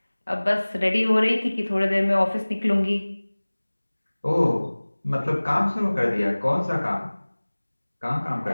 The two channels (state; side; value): inverted; both; correlation -1.00